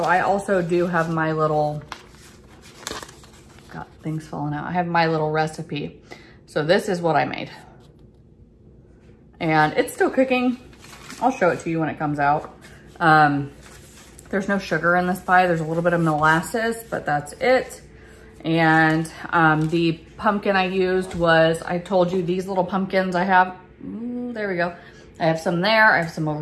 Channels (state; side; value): identical; both; correlation 1.00